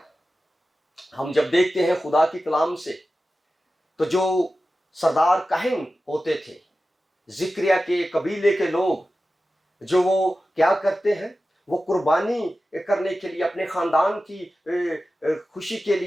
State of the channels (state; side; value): normal; both; correlation 0.94